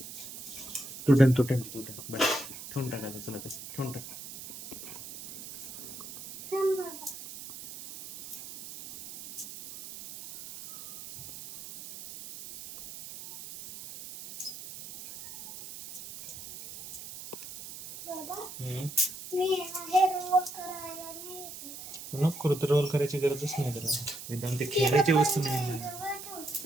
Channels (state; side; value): noise; right; hiss, 12 dB below the sound